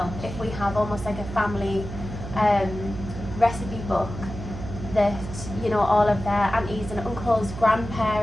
if we have almost like a family recipe book that, you know, all of their aunties and uncles,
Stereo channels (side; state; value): right; noise; hum, 9 dB below the sound